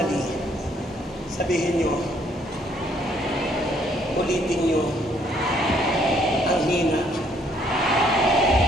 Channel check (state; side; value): normal; both; correlation 0.66